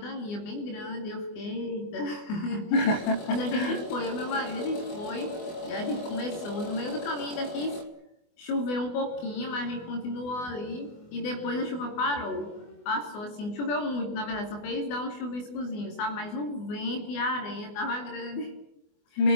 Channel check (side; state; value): right; late; 24 ms